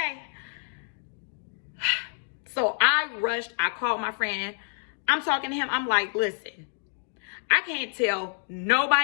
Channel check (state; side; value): silent; right; 59 dB below the other